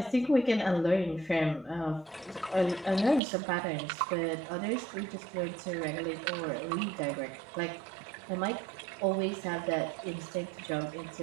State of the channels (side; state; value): left; drops out; at 3.2 s